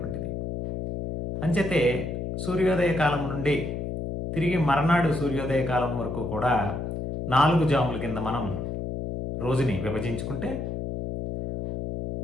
అంచేతే సూర్యోదయ కాలం నుండి తిరిగి మర్నాడు సూర్యోదయ కాలం వరకు కూడా 4 జాముల కింద మనం రోజుని విభజించుకుంటే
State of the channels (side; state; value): left; noise; hum, 4 dB below the sound